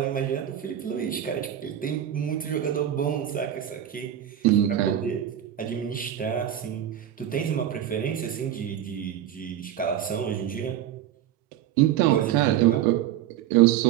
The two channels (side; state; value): left; quieter; 10.8 dB